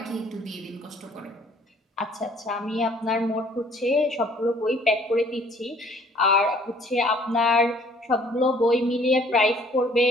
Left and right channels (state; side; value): normal; both; correlation 0.57